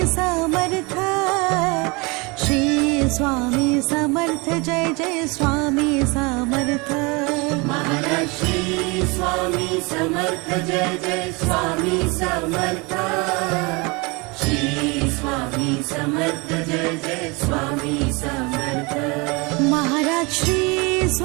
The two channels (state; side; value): quieter; left; 27.4 dB